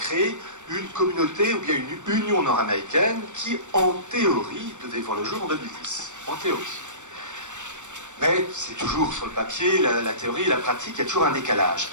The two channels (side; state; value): left; late; 0.85 ms